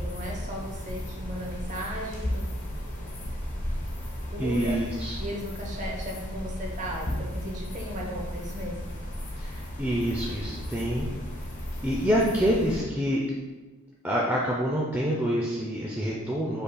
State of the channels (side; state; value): both; normal; correlation 0.67